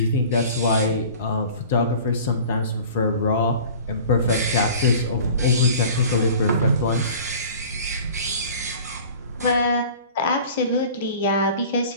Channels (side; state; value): both; inverted; correlation -0.43